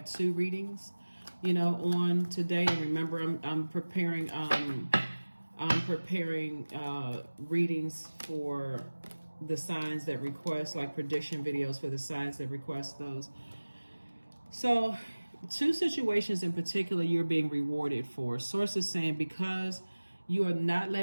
two readings, on today. And remember, I'm preparing readings for the signs that request, like prediction videos for the signs that request those. So two situations in particular you're being rewarded for. Source is saying, because you are not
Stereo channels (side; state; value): both; inverted; correlation -1.00